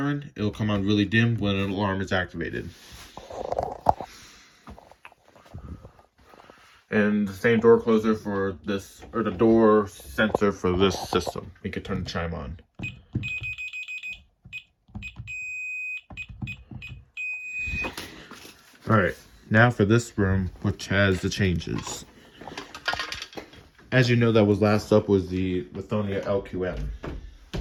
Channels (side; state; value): both; identical; correlation 1.00